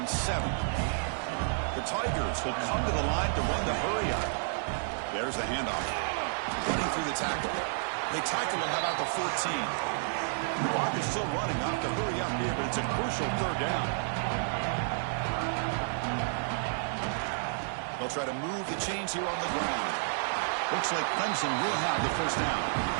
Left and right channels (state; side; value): silent; left; digital silence